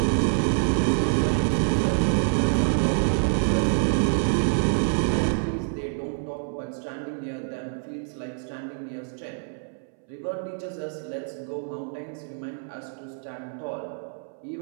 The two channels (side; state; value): left; silent; 61 dB below the other